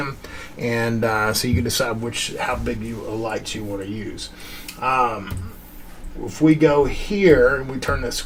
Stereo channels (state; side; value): identical; both; correlation 1.00